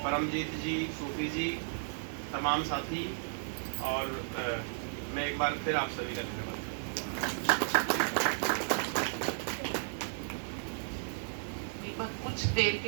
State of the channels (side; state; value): left; silent; digital silence